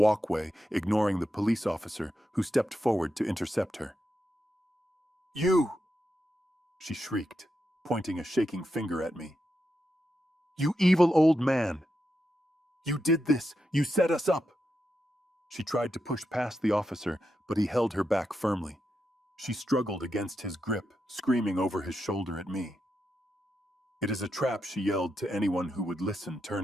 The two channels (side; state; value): both; normal; correlation 0.86